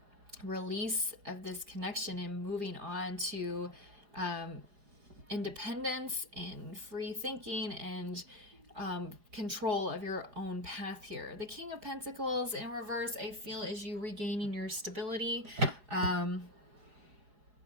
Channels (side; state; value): left; late; 4.9 ms